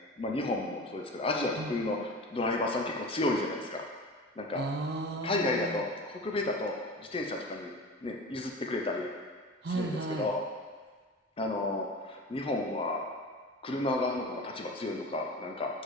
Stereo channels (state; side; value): normal; both; correlation 0.33